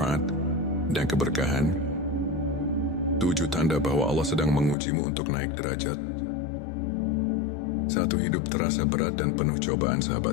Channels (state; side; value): drops out; right; at 4.8 s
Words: dan keberkahan. 7 tanda bahwa Allah sedang mengujimu untuk naik derajat. 1. Hidup terasa berat dan penuh cobaan.